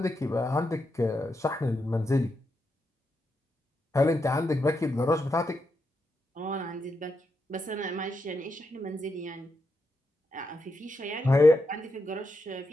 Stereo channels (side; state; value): both; normal; correlation 0.84